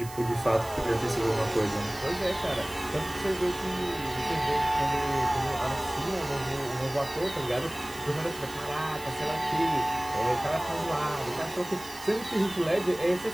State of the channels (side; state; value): right; noise; hiss, 15 dB below the sound